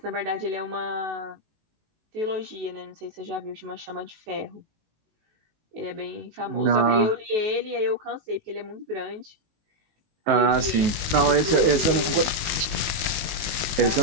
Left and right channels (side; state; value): left; late; 19 ms